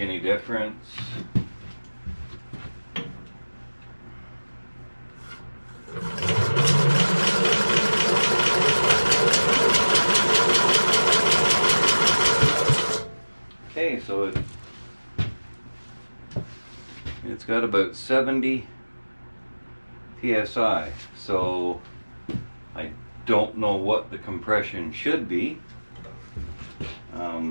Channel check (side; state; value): both; inverted; correlation -1.00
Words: difference. Okay, so it's got about 70 psi, so I don't know what the compression should be.